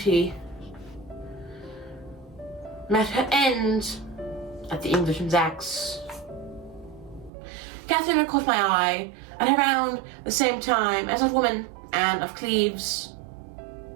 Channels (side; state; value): left; drops out; at 7.3 s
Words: met her end at the Englishman's axe. Katheryn had caught my eye at around the same time as that woman, Anne of Cleves.